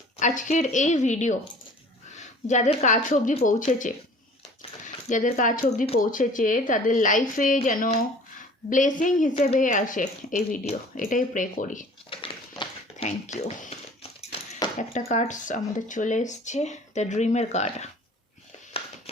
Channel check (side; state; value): both; normal; correlation 0.48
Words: আজকের এই ভিডিও যাদের কাছ অবধি পৌঁছেছে তাদের লাইফে যেন ব্লেসিং হিসেবে আসে এই ভিডিও, এটাই প্রে করি। Thank you. একটা কার্ডস আমাদের চলে এসছে, দ্য ড্রিমের card.